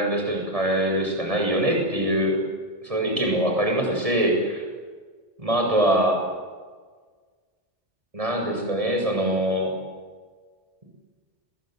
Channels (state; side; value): late; left; 1.7 ms